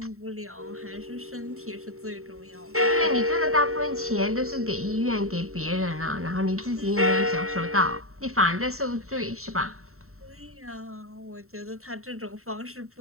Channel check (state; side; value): late; left; 0.63 ms